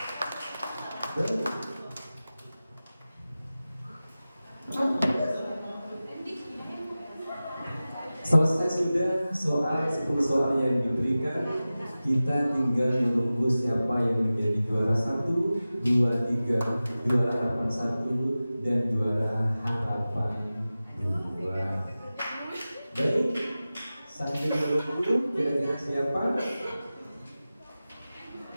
Selesai sudah soal 10 soal yang diberikan. Kita tinggal menunggu siapa yang menjadi juara 1, 23, juara harapan 1 dan juara harapan 2. Baik, sambil menunggu kira-kira siapa?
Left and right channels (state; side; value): inverted; both; correlation -0.96